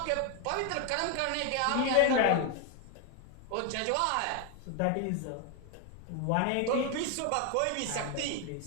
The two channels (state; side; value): different; both; correlation 0.01